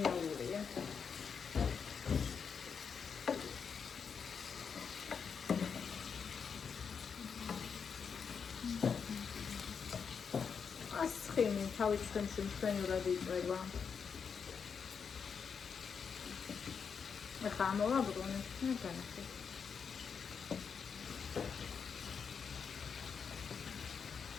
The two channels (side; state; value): right; quieter; 6.3 dB